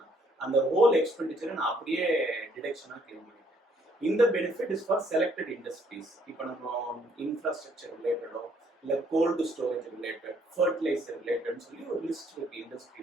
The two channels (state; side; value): normal; both; correlation 0.66